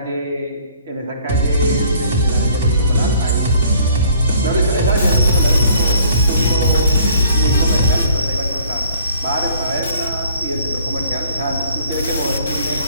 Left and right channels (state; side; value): inverted; both; correlation -0.57